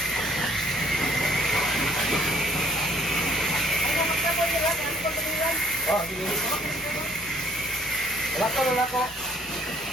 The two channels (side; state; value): right; noise; rumble, 25 dB below the sound